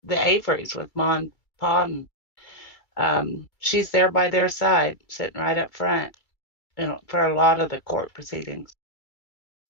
Averys, with Ma and Pa, and she's there by their side, sitting right up front, you know, for a lot of the court proceedings.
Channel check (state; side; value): late; right; 2.3 ms